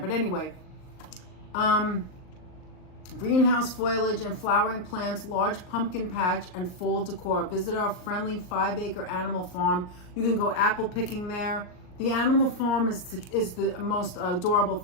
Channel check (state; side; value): late; right; 38 ms